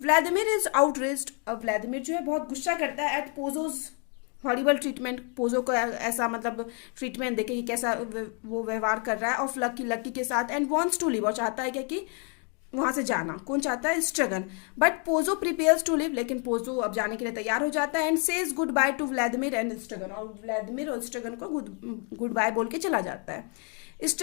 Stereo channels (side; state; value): right; quieter; 38.6 dB